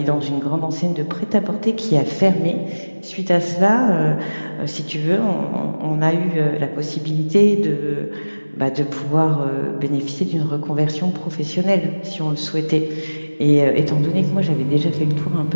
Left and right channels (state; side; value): inverted; both; correlation -1.00